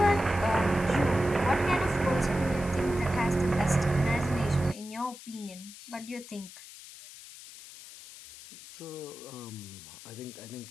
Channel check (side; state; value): left; noise; hiss, 16 dB below the sound